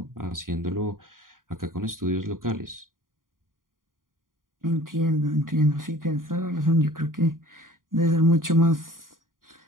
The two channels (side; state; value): left; late; 0.90 ms